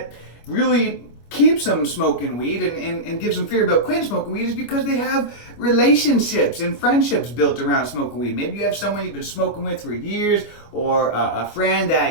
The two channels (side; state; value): right; late; 25 ms